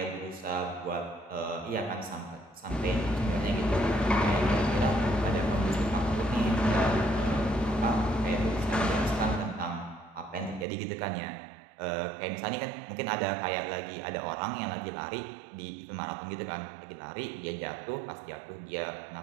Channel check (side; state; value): left; drops out; at 10.7 s